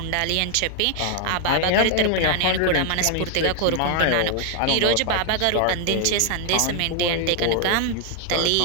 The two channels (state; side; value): different; both; correlation 0.00